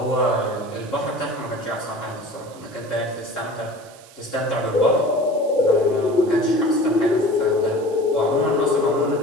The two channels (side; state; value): right; noise; hiss, 23 dB below the sound